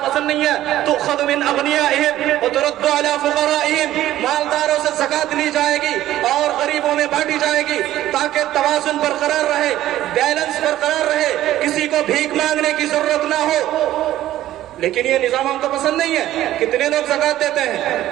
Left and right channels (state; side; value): quieter; left; 13.8 dB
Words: पसंद नहीं है। तो खुद मिन अगनियाहिम व तुरद्दु अला फुक़राइहिम, मालदारों से ज़कात ली जाएगी और गरीबों में बांटी जाएगी ताकि तवाज़ुन बरकरार रहे, बैलेंस बरकरार रहे, किसी को भीख मांगने की जरूरत ना हो। लेकिन ये निजाम हमको पसंद नहीं है। कितने लोग ज़कात देते हैं?